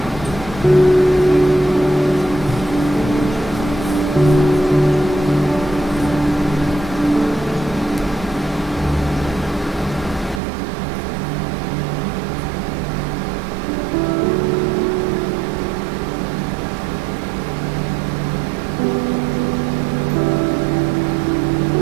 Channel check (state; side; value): drops out; left; at 10.4 s